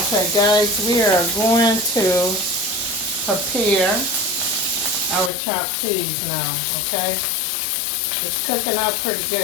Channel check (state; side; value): drops out; right; at 5.3 s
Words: guys, we are going to prepare our chopped cheese now, okay? It's cooking up pretty